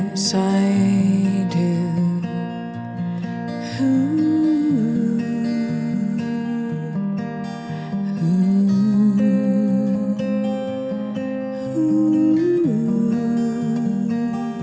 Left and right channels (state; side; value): identical; both; correlation 1.00